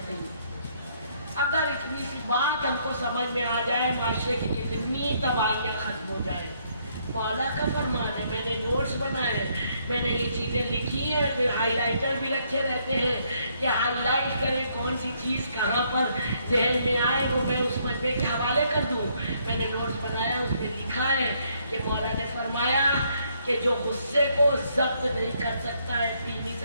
नहीं। अगर इतनी सी बात हमको समझ में आ जाए, माशरे की कितनी तबाहियाँ खत्म हो जाए। मौला का फरमान है, मैंने नोट्स बनाए हैं, मैंने ये चीज़ें लिखी हैं, फिर हाईलाइटर भी रखे रहते हैं कि हाईलाइट करें कौन सी चीज़ कहाँ पर जहन में आए वो मैं उस मजमे के हवाले कर दूँ। मैंने नोट्स बनाया, उसमें लिखा है कि मौला ने फरमाया कि जो गुस्से को जब्त नहीं कर सकता है, पी नहीं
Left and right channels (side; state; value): both; inverted; correlation -0.70